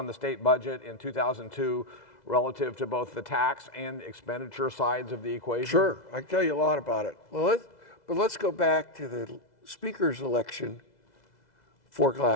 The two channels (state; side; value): late; right; 2.0 ms